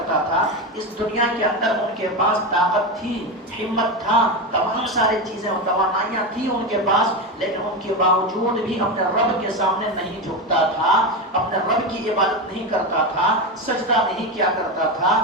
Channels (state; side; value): normal; both; correlation 0.16